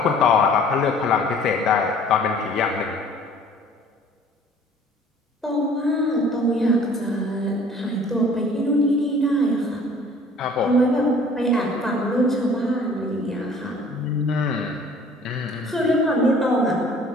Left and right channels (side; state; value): both; normal; correlation 0.52